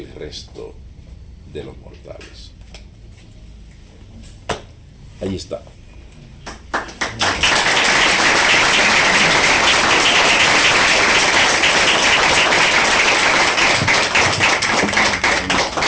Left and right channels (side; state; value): both; identical; correlation 1.00